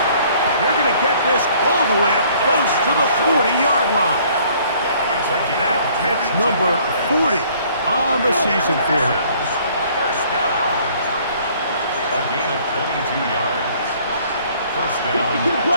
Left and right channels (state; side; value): inverted; both; correlation -0.58